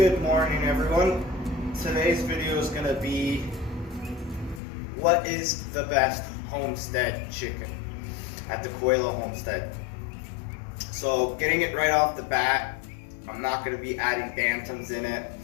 morning, everyone. Today's video is going to be what is the best Homestead chicken at the Coelho Homestead. So getting it right off the bat, I'm not going to be adding bantams in it,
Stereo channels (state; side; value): drops out; right; at 4.6 s